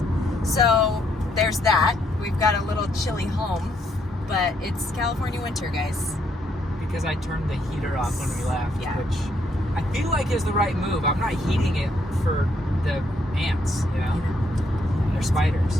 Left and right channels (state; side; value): normal; both; correlation 0.73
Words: So there's that. We've got a little chilly home, but it's California winter, guys. Because I turned the heater off when we left, Yeah. which I feel like is the right move. I'm not heating it for the ants, you know? They're